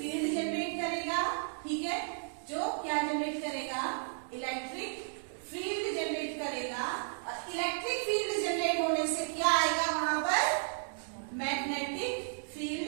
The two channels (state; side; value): silent; left; digital silence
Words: जनरेट करेगा, ठीक है। जो क्या जनरेट करेगा, इलेक्ट्रिक फील्ड जनरेट करेगा। और इलेक्ट्रिक फील्ड जनरेट होने से क्या आएगा, वहां पर मैग्नेटिक